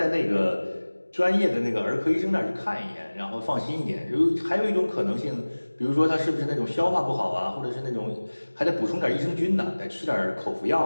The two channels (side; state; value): both; inverted; correlation -1.00